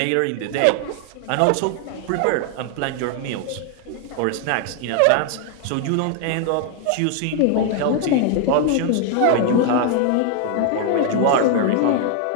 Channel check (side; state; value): both; different; correlation 0.00